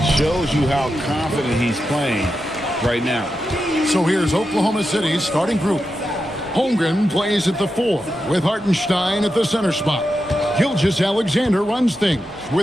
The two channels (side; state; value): both; normal; correlation 0.88